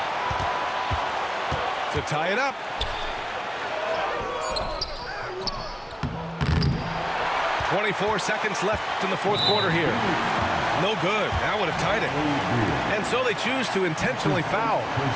To tie it up. 24 seconds left in the fourth quarter here. No good. That would have tied it. And so they choose to intentionally foul.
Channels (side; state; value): both; identical; correlation 1.00